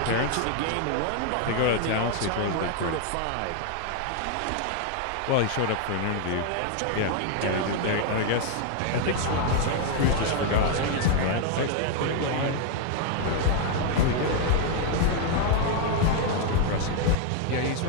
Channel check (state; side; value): different; both; correlation 0.00